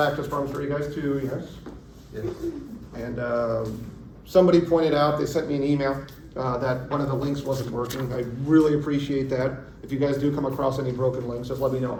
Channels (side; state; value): both; identical; correlation 1.00